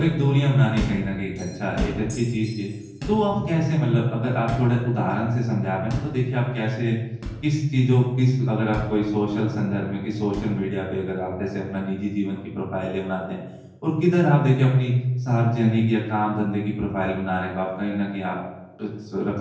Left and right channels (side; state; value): both; identical; correlation 1.00